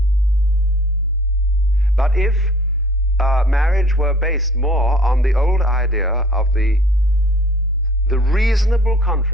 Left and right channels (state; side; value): noise; left; rumble, 29 dB below the sound